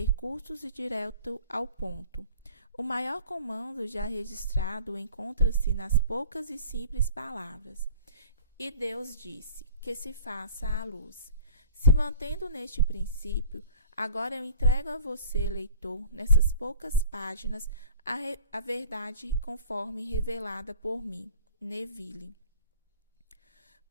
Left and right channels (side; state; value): both; inverted; correlation -0.46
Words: curtos e direto ao ponto. O maior comando já registrado encontra-se nas poucas e simples palavras: "E Deus disse que se faça a luz." Se mantendo neste princípio, agora eu entrego a você, leitor, nessas poucas páginas, a verdade conforme revelada por mim, Neville.